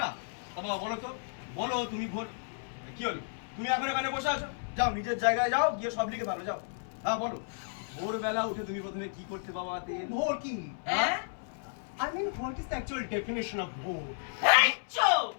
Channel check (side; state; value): right; silent; 56 dB below the other